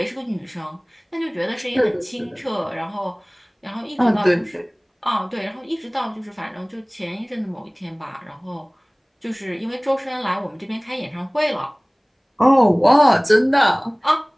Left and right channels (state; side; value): identical; both; correlation 1.00